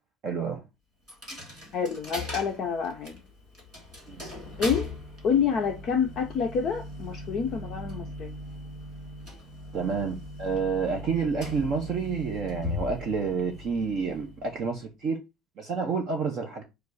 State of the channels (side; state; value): both; normal; correlation 0.38